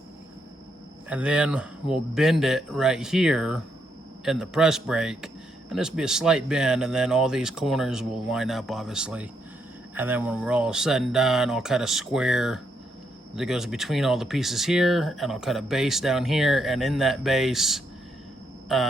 then we'll bend it right here in the press brake, and this will be a slight bend, and then all these corners will line up, obviously. And then when we're all said and done, I'll cut a square that goes between all the pieces here, and I'll cut a base down here, and in that base,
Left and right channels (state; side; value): normal; both; correlation 0.78